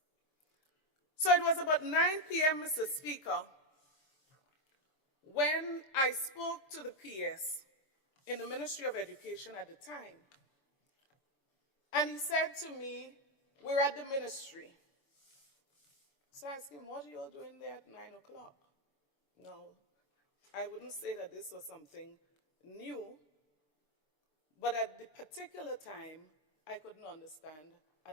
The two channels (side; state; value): right; late; 6.9 ms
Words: So it was about 9 p.m., Mr. Speaker, when I spoke to the PS in the Ministry of Education at the time. And he said to me, we're at the ministry. So I asked him, what are you all doing there at 9 o'clock? No, I wouldn't say that this was something new, but at the particular time, I couldn't understand